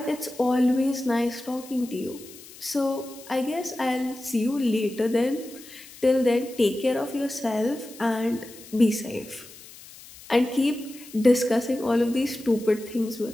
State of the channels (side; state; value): left; noise; hiss, 19 dB below the sound